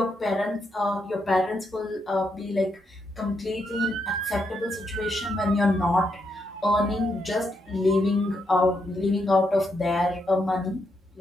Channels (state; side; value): normal; both; correlation 0.80